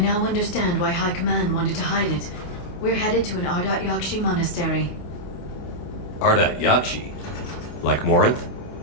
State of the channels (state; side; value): late; right; 28 ms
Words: understand why High Command wanted to hide it. We're headed to an Ardat-Yakshi Monastery. Ardat-Yakshi? Like Morinth?